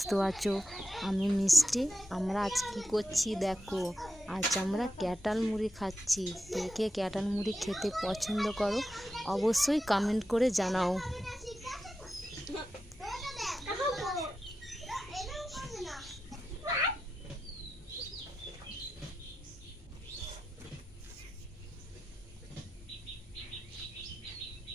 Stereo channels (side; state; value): both; normal; correlation 0.89